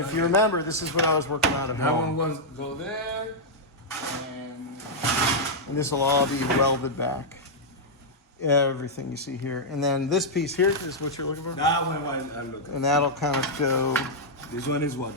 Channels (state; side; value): normal; both; correlation -0.06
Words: if you remember, this is what I was working on at That one home. was go there, and And this will all be welded back. Everything you see here. And then this piece here is what you're looking for? That one I'm looking. And that'll kind of go, This one is